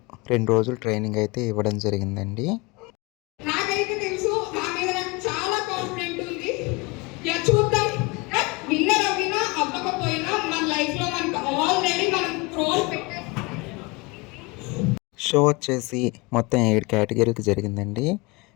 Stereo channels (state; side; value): quieter; right; 25.6 dB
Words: 2 రోజులు ట్రైనింగ్ అయితే ఇవ్వడం జరిగిందండి. నాకైతే తెలుసు నా మీద నాకు చాలా కాన్ఫిడెంట్ ఉంది. చూద్దాం. విన్నర్ అవ్వినా అవ్వకపోయినా మన లైఫ్‌లో మనకు ఆల్రెడీ మనం క్రోర్ పెట్టేసాం. షో వచ్చేసి మొత్తం 7 కేటగిరీలకు జరిగిందండి.